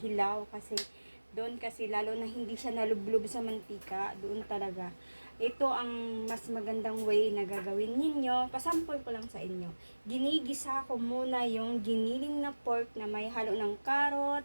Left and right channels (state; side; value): inverted; both; correlation -1.00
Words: Kasi doon kasi lalo na hindi siya nalublob sa mantika. Doon talaga. Ito ang mas magandang way na gagawin ninyo. Pasample ko lang sa inyo. Ginigisa ko muna yung giniling na pork na may halo ng